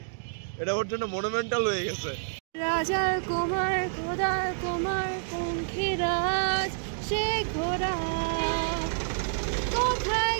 এটা ওর জন্য মনুমেন্টাল হয়ে গেছে। রাজার কুমার খোদার কুমার পঙ্খিরাজ সে ঘোড়া কোথায়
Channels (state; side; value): silent; left; digital silence